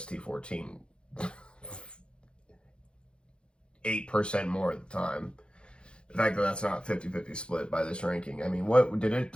8% more at the time. The fact that that's not 50-50 split by this ranking. I mean,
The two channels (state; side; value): late; right; 0.054 ms